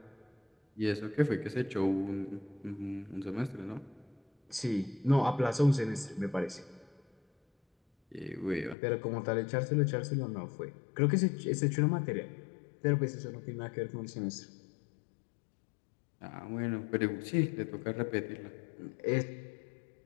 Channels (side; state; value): right; drops out; at 8.8 s